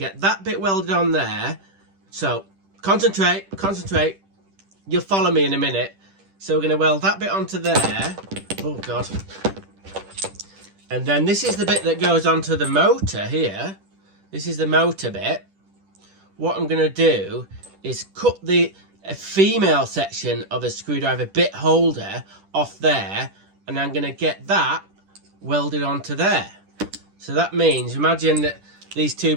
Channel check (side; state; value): left; late; 10 ms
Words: that bit welded on there. So concentrate, you'll follow me in a minute. So we're going to weld that bit onto there. Oh god. And then this is the bit that goes onto the motor here. This is the motor bit. What I'm going to do is cut a female section of a screwdriver bit holder off there, and I'm going to get that welded onto there. So that means, imagine that these two